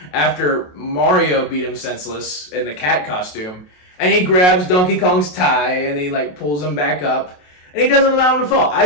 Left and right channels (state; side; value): late; right; 28 ms